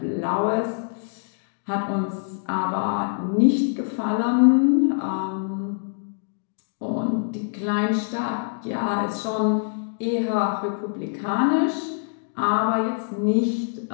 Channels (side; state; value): right; silent; digital silence